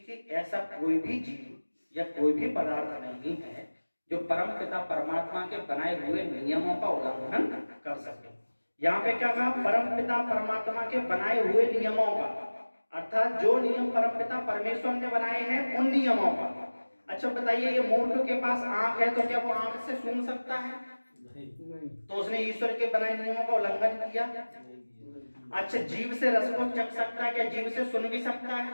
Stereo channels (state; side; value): inverted; both; correlation -1.00